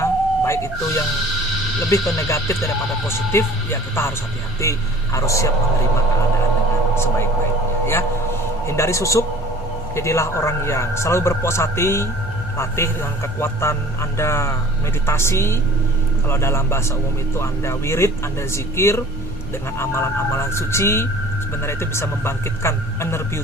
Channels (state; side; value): noise; left; hum, 19 dB below the sound